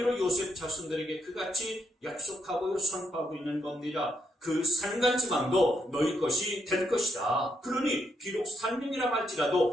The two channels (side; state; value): both; normal; correlation 0.78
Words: 요셉 자손들에게 그같이 약속하고 선포하고 있는 겁니다. 그 산간지방도 너희 것이 될 것이다. 그러니 비록 산림이라